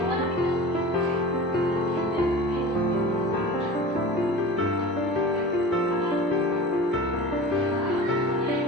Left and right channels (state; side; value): normal; both; correlation 0.35